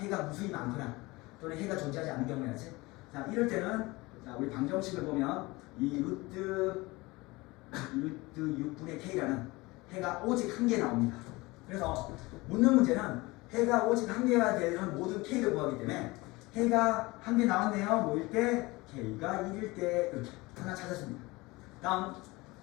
무수히 많거나 또는 해가 존재하지 않는 경우야지. 자, 이럴 때는 자, 우리 방정식을 보면 이 루트 6분의 K라는 해가 오직 한 개 나옵니다. 그래서 묻는 문제는 해가 오직 한 개가 되는 모든 K를 구하기 때문에 해가 한 개 나왔네요. 뭐일 때? K가 1일 때 이렇게 하나 찾았습니다. 다음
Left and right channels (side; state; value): right; quieter; 22.3 dB